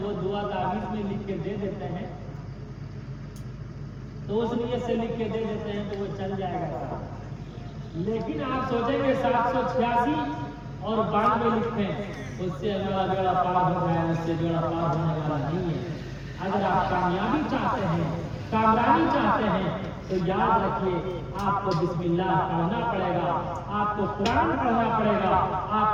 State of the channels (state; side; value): identical; both; correlation 1.00